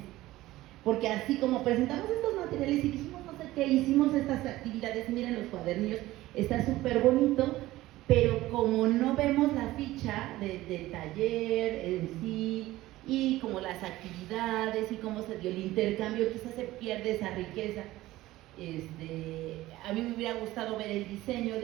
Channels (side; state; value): left; quieter; 16.9 dB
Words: Porque así como presentamos estos materiales y dijimos no sé qué, hicimos estas actividades, miren los cuadernillos, está súper bonito, pero como no vemos la ficha del taller en sí, y como las actividades y cómo se dio el intercambio, quizás se pierde esa riqueza. A mí me hubiera gustado ver el diseño